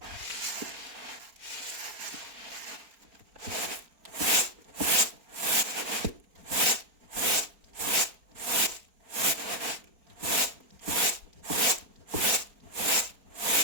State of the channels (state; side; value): late; left; 4.4 ms